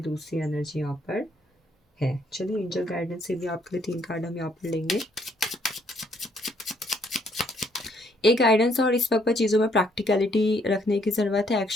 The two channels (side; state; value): both; normal; correlation 0.68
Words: दूसरी एनर्जी यहाँ पर है। चलिए एंजल गाइडेंस से भी आपके लिए 3 कार्ड हम यहाँ पर लेंगे। एक गाइडेंस, और इस वक्त पर चीज़ों में प्रैक्टिकलिटी रखने की ज़रूरत है।